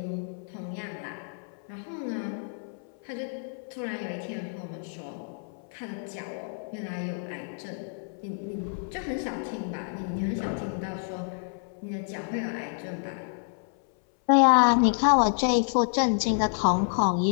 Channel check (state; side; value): silent; right; 59 dB below the other